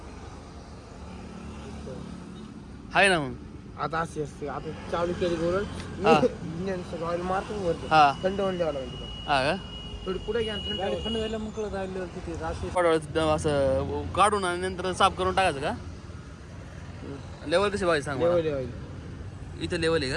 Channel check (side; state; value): both; identical; correlation 1.00